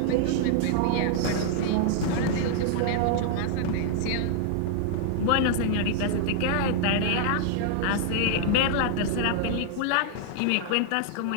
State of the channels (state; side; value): different; both; correlation -0.01